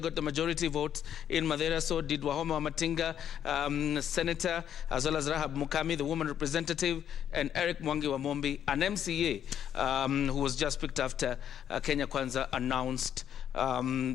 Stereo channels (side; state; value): right; quieter; 9.6 dB